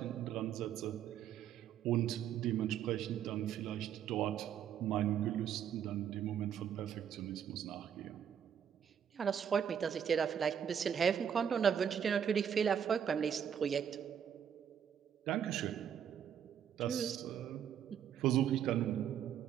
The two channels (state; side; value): quieter; left; 8.7 dB